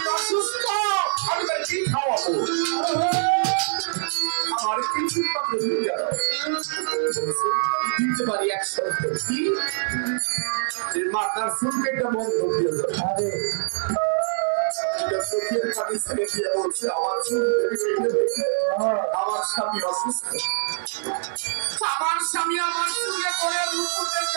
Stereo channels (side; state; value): left; silent; 62 dB below the other